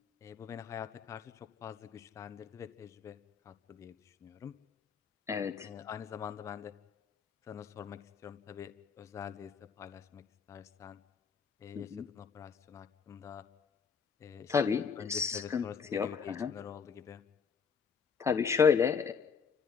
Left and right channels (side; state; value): right; quieter; 6.2 dB